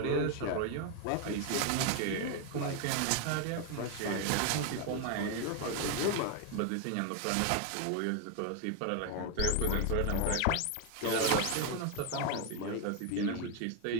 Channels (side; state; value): both; different; correlation 0.01